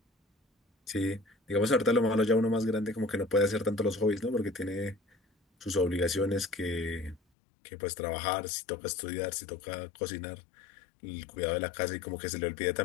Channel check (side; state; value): right; drops out; at 7.2 s